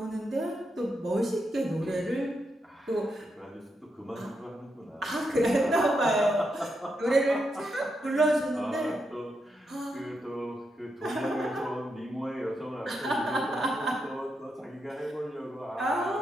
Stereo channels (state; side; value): normal; both; correlation 0.83